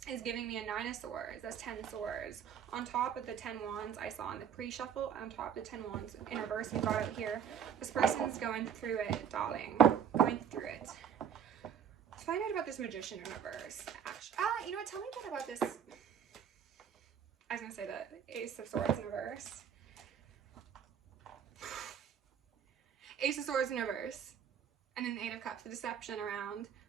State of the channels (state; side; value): quieter; left; 8.3 dB